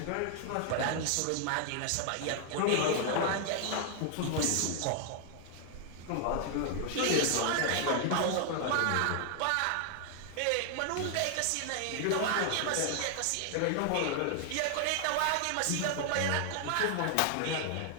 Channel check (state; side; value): different; both; correlation 0.00